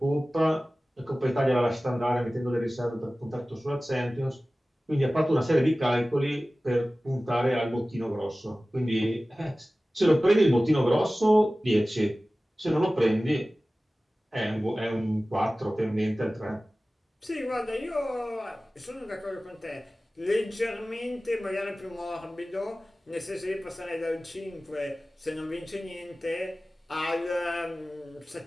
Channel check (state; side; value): normal; both; correlation 0.97